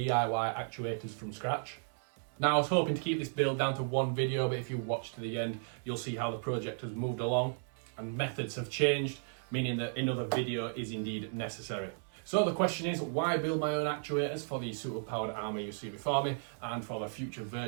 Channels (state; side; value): silent; left; 55 dB below the other